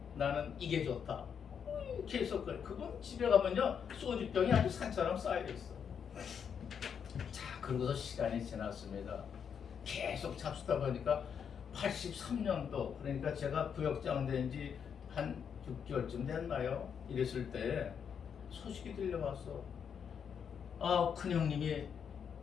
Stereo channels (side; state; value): right; quieter; 7.4 dB